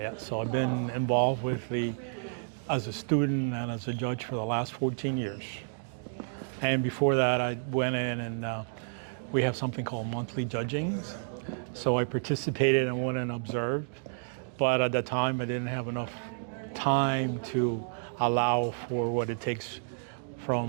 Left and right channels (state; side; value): silent; left; digital silence